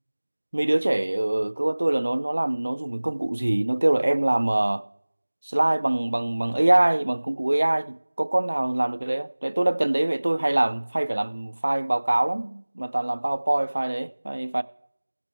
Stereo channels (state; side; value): inverted; both; correlation -1.00